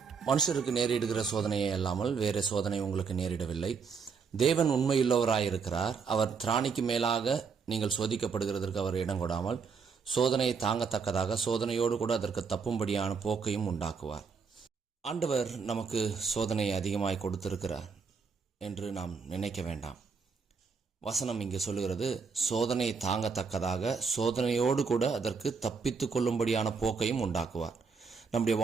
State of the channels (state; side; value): quieter; left; 5.5 dB